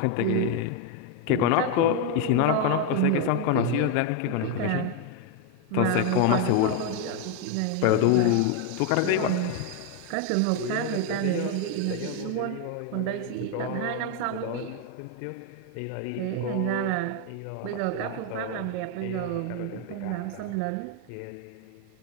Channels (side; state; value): both; different; correlation 0.01